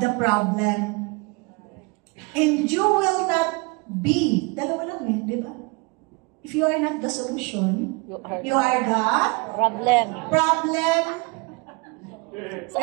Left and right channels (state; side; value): quieter; left; 28.8 dB